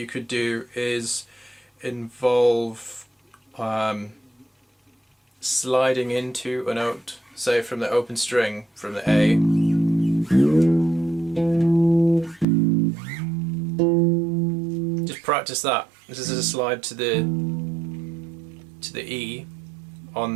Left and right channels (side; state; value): left; drops out; at 12.5 s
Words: could do is involve sliding into a note, say from the open string, from the A. Just practice that. This is a slide to the E